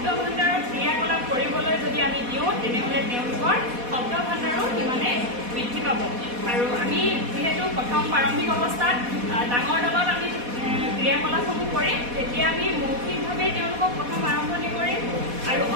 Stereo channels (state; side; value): late; left; 4.1 ms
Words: ভাণ্ডাৰৰ ক্ৰিয়াকলাপ কৰিবলৈ যদি আমি দিওঁ তেনেহ'লে তেওঁলোকৰ শব্দ ভাণ্ডাৰো সিমানে বৃদ্ধি পাব। আৰু আমি যিহেতু প্ৰথম প্ৰাৰম্ভিক অৱস্থাত ডাঙৰ দলত আমি ক্ৰিয়াকলাপসমূহ কৰিম, তেতিয়া আমি মৌখিকভাৱে তেওঁলোকক প্ৰথম আৰম্ভণি কৰিম আৰু